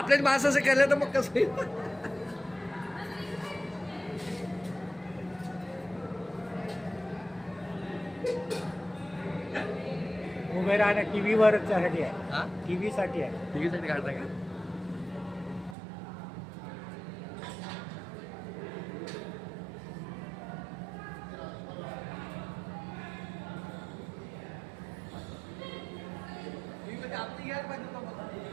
माणसाचं केलं तर मग कसं उभे राहणं टीव्हीवर साठी आहे, टीव्ही साठी आहे. टीव्हीसाठी काढता का? आपली घ्यायला पाहिजे होतं मला.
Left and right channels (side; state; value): left; drops out; at 15.8 s